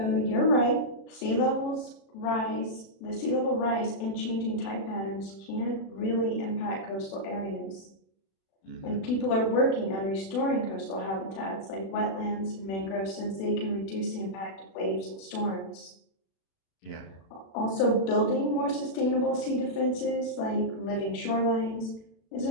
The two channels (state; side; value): late; right; 36 ms